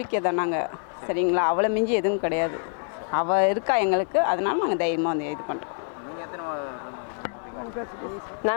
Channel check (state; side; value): silent; right; 61 dB below the other